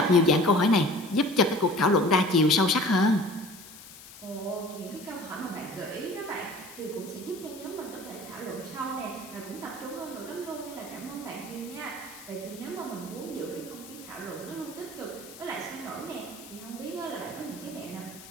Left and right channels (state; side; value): noise; left; hiss, 17 dB below the sound